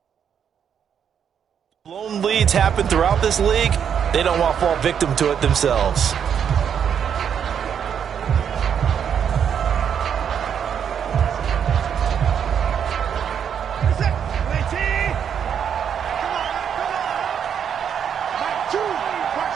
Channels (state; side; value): quieter; left; 8.1 dB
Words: Blown leads happen throughout this league. They don't want to fall victim to it themselves.